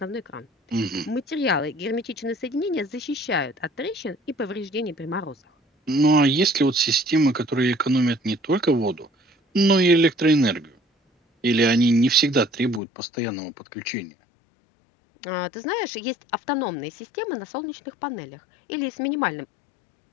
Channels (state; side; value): drops out; right; at 12.8 s